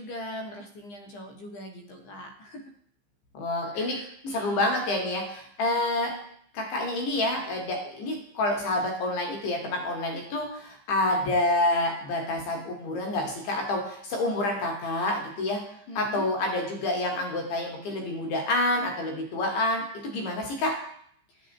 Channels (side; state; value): right; late; 15 ms